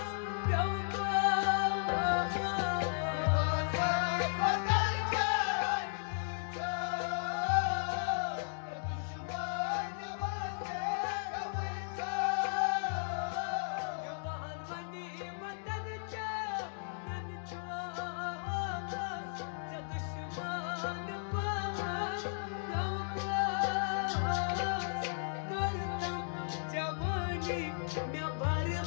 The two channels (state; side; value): silent; right; digital silence